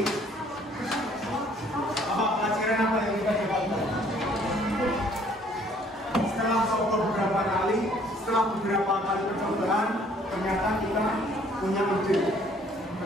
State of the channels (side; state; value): both; normal; correlation 0.60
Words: Apa pelajaran apa yang kita dapatkan? Setelah coba beberapa kali, setelah beberapa kali percobaan, ternyata kita punya ide,